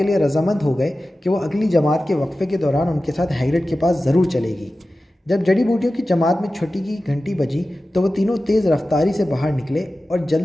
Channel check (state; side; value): normal; both; correlation 0.95